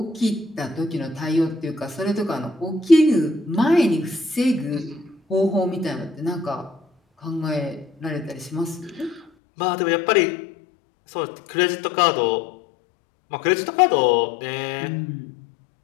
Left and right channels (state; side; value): drops out; right; at 9.3 s